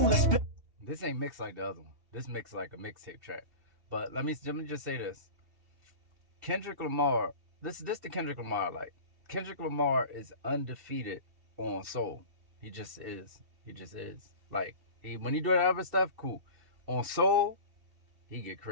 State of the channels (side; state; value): left; late; 2.7 ms